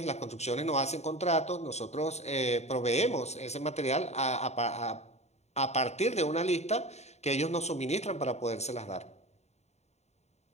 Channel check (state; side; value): late; right; 0.32 ms